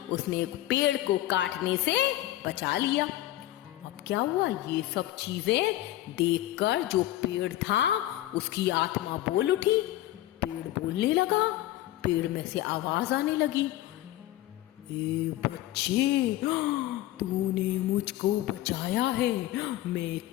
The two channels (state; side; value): quieter; right; 15.2 dB